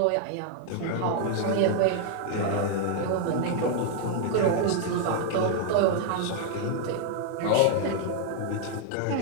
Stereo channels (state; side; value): different; both; correlation 0.00